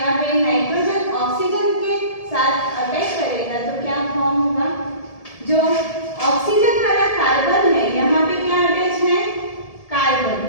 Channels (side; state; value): right; late; 1.7 ms